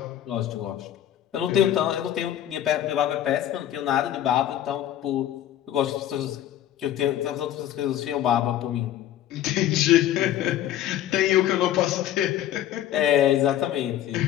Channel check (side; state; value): right; quieter; 11.8 dB